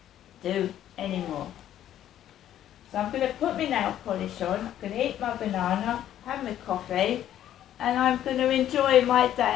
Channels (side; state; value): right; quieter; 11.5 dB